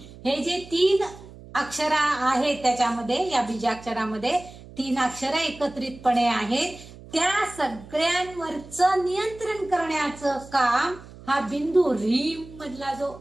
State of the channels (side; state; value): right; noise; hum, 18 dB below the sound